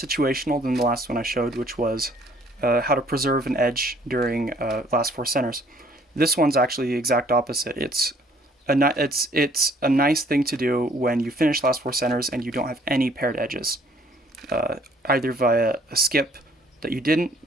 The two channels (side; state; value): both; normal; correlation 0.60